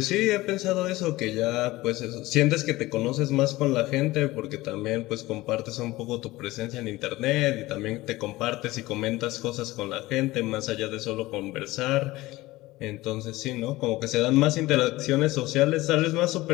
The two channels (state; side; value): quieter; right; 18.9 dB